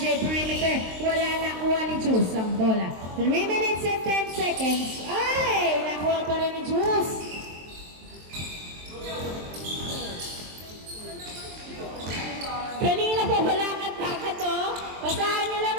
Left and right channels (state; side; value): late; left; 23 ms